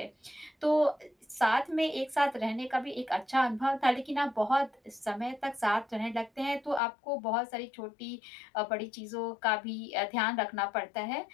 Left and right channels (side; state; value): right; drops out; at 6.8 s